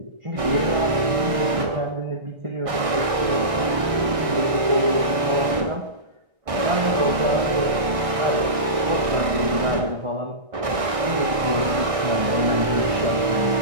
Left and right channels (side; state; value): left; late; 1.6 ms